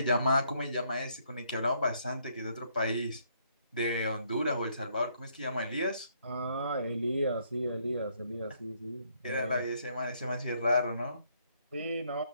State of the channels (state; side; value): inverted; both; correlation -0.70